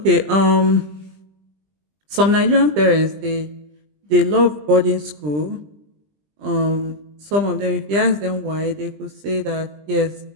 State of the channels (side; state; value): left; late; 20 ms